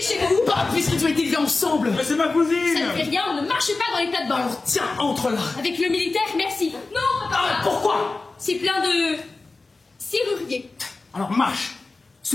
chez vous. Bah, puisqu'ils ont été élevés ensemble. Mais c'est ma Ça cousine. ne fait rien, on ne marche pas dans les plates-bandes. Alors tiens, entre là. Avec le militaire, merci. Non, papa. Ah, pourquoi? C'est plein de serruriers. Alors marche.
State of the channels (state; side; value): quieter; right; 3.6 dB